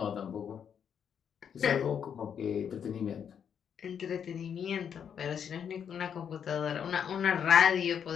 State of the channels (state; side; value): quieter; right; 7.9 dB